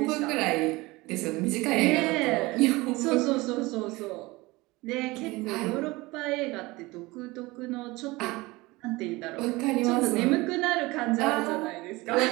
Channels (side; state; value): left; quieter; 21.8 dB